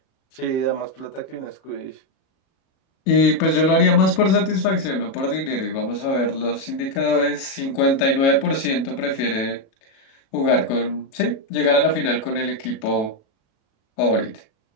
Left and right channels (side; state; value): right; late; 37 ms